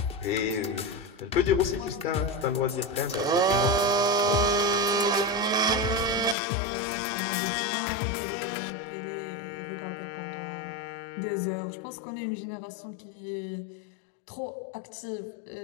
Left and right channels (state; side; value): drops out; right; at 6.4 s